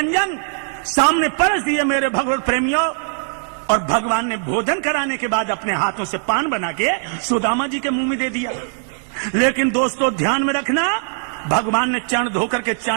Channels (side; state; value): left; silent; 66 dB below the other